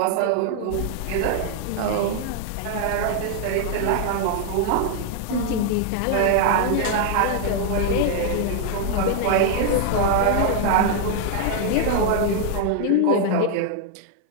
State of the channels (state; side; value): different; both; correlation 0.00